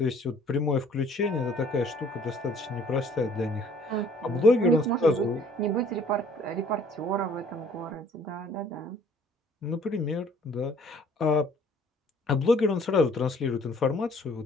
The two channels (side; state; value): both; normal; correlation 0.57